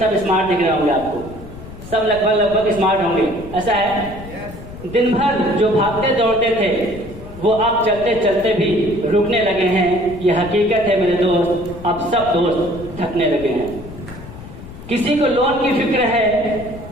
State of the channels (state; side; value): noise; left; rumble, 14 dB below the sound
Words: स्मार्ट दिख रहे होंगे आपको, सब लगभग स्मार्ट होंगे। ऐसा है? दिन भर जो भागते दौड़ते थे वो अब चलते चलते भी रुकने लगे हैं। ये हकीकत है मेरे दोस्त, अब सब दोस्त थकने लगे हैं। किसी को लोन की फिक्र है,